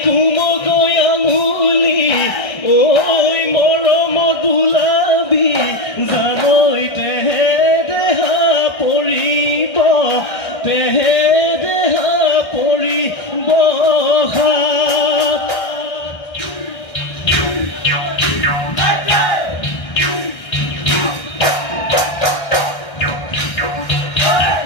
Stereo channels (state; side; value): late; right; 1.6 ms